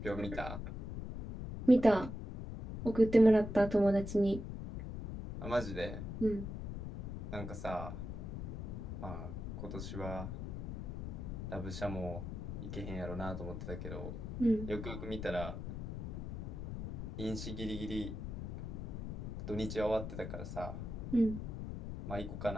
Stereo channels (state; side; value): noise; left; rumble, 6 dB below the sound